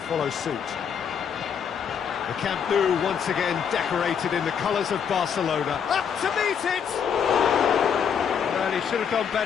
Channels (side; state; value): right; quieter; 7.5 dB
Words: suit. The Camp Nou once again decorated in the colours of Barcelona. Up to meet it! Well, he should have done